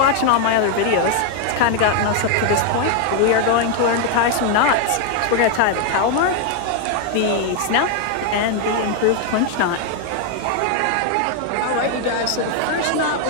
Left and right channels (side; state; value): both; different; correlation 0.00